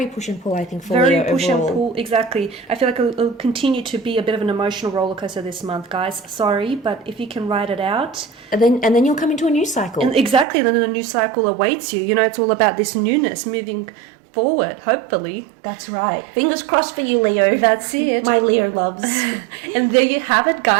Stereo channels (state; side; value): drops out; left; at 10.5 s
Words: push and pull, I think, for Leo push overall. and pull, exactly. I feel like it'll continue to be a bit of an emotional roller coaster this month, guys. Sorry, but if you can ride it out, and then you'll come into a new cycle. And exactly, then a new cycle awaits you. You know, it's all about this newness, moving forward, hopefully. That's right. Fingers crossed for you, Leo. That's it. My Leo loves. And there you have it,